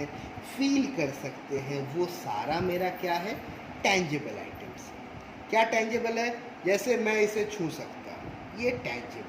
फील कर सकते हैं, वो सारा मेरा क्या है? Tangible items. क्या टेंजिबल है? जैसे मैं इसे छू सकता हूँ, ये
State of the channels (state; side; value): identical; both; correlation 1.00